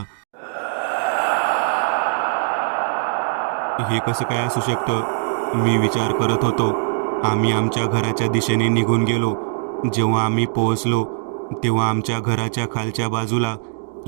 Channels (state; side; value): silent; left; digital silence